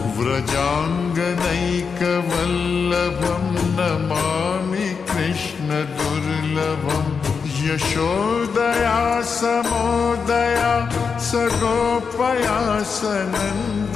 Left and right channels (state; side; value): quieter; right; 5.7 dB